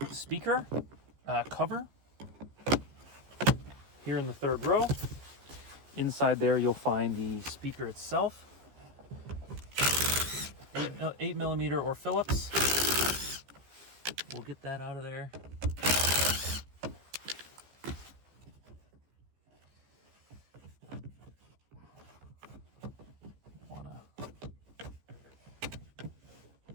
speaker cover here in the third row. Inside there, you'll find the speaker itself. 8mm or Phillips. We'll get that out of there.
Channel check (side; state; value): left; late; 15 ms